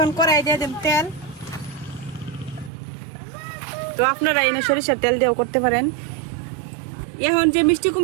কড়াই দিয়ে দেব তেল। তো আপনারা এনে সরিষার তেল দিয়েও করতে পারেন। এখন যে মিষ্টি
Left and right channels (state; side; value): drops out; left; at 2.7 s